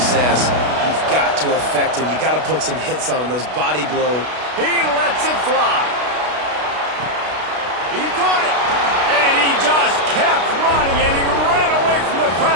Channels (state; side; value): late; left; 32 ms